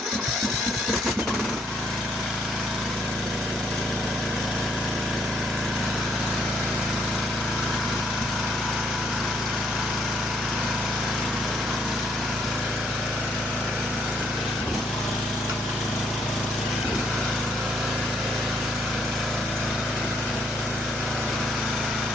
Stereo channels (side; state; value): both; normal; correlation 0.70